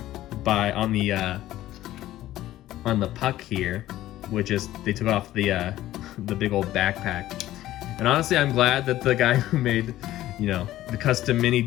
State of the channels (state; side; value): quieter; right; 14.5 dB